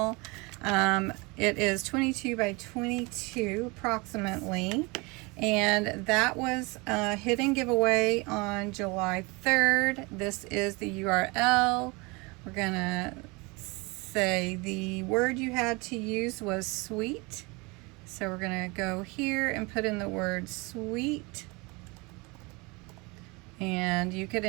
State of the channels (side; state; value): left; quieter; 26.7 dB